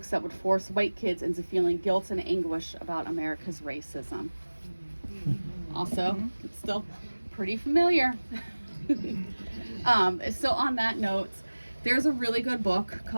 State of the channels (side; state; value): both; inverted; correlation -1.00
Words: that would force white kids into feeling guilt and anguish about America's racism. Also, it's still pretty familiar. So on that note, there's a really good book